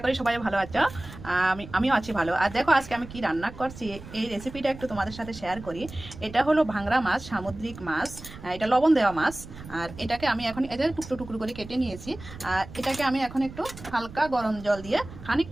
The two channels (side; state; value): right; noise; rumble, 15 dB below the sound